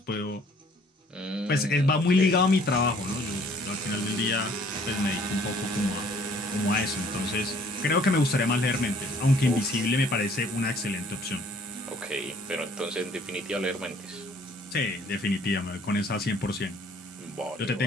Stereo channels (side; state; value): both; normal; correlation 0.58